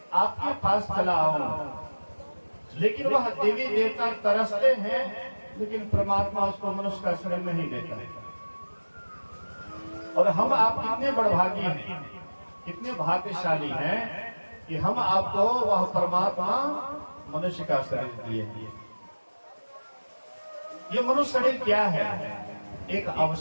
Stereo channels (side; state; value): both; inverted; correlation -1.00